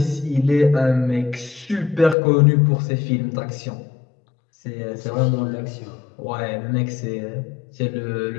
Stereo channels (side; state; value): right; drops out; at 2.1 s